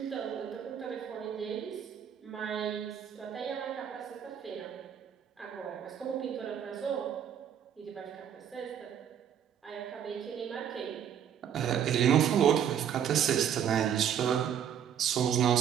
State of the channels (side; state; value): left; quieter; 9.0 dB